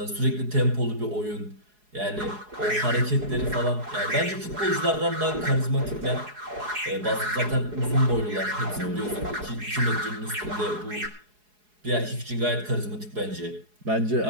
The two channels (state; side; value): late; left; 4.8 ms